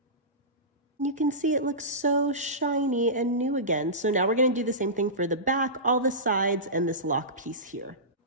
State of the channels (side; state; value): both; normal; correlation -0.19